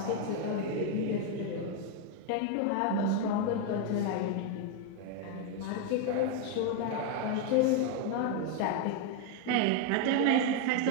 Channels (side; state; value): both; different; correlation 0.01